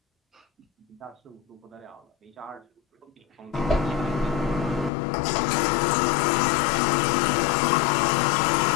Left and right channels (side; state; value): right; drops out; at 4.9 s